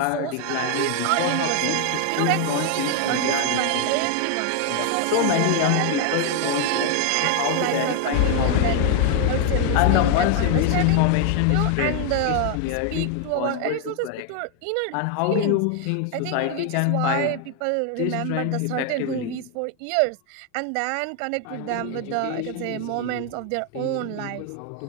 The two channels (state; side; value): different; both; correlation 0.00